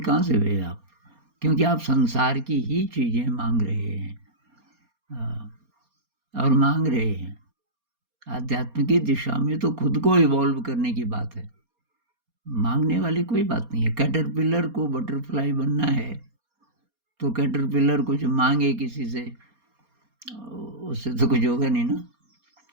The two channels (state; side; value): late; left; 4.3 ms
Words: कहाँ से हुए आप? क्योंकि आप संसार की ही चीज़ें मांग रहे हैं और मांग रहे हैं। आध्यात्म की दिशा में तो खुद को इवॉल्व करने की बात है, मांगने वाली कोई बात नहीं है। कैटरपिलर को बटरफ्लाई बनना है तो कैटरपिलर कुछ मांगे किसी से, उससे तो कुछ होगा नहीं ना।